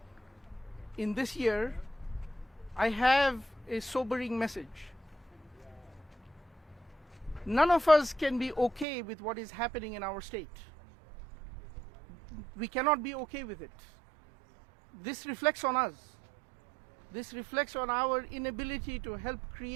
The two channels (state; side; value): drops out; left; at 8.8 s